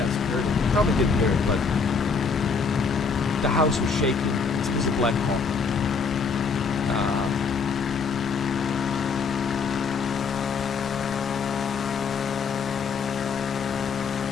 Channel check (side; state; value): right; quieter; 5.1 dB